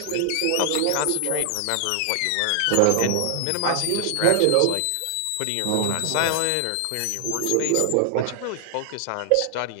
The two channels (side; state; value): both; different; correlation 0.00